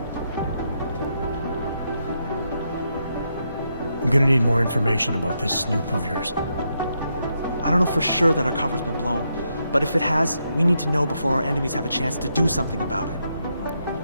I'm gonna need more information about this snoop of yours. I don't know for sure that our cover's been blown, but if it has, we need to know before our enemies have a chance to do something about it.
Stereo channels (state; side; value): inverted; both; correlation -0.81